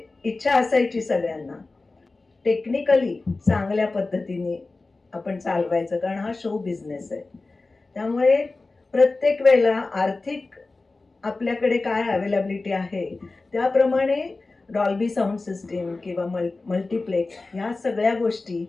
इच्छा असायची सगळ्यांना. टेक्निकली चांगल्या पद्धतीने आपण चालवायचं, कारण हा शो बिझनेस आहे. त्यामुळे प्रत्येक वेळेला आर्थिक आपल्याकडे काय अवेलेबिलिटी आहे त्याप्रमाणे डॉल्बी साऊंड सिस्टीम किंवा मल्टीप्लेक्स ह्या सगळ्या गोष्टी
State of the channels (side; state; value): right; quieter; 3.5 dB